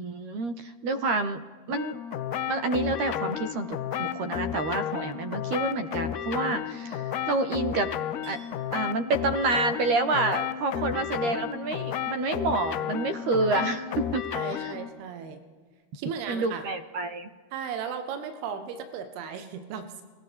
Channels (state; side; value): late; left; 13 ms